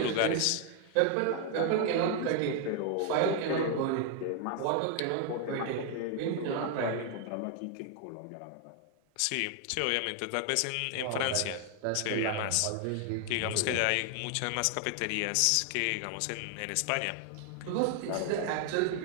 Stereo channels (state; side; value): different; both; correlation 0.00